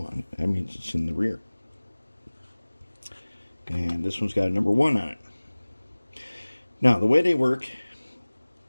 it. That means it's in the rear. And this one's got a number 1 on it. Now, the way they work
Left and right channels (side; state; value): both; inverted; correlation -1.00